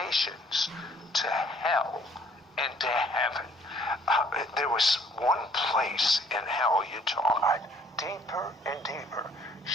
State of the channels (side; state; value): both; normal; correlation 0.61